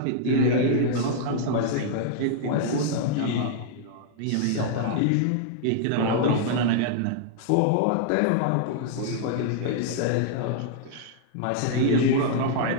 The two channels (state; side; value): different; both; correlation -0.01